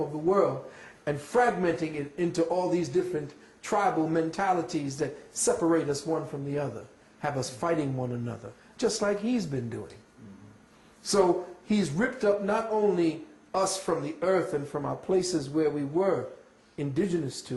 of the world, and fragmenting it into all these different tribal mentalities that separate us one from the other, have us fighting one another, just like he's been doing. So he's ripped up not only us from the earth and from our places where we were indigenous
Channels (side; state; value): both; identical; correlation 1.00